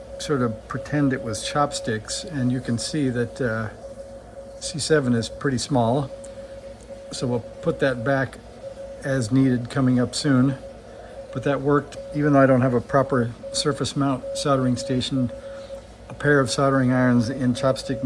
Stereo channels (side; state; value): both; identical; correlation 1.00